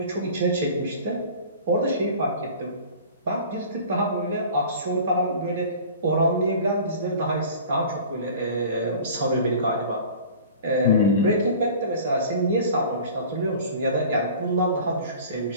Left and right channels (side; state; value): both; inverted; correlation -0.43